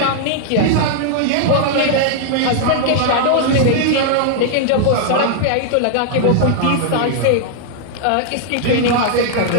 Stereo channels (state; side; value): different; both; correlation -0.01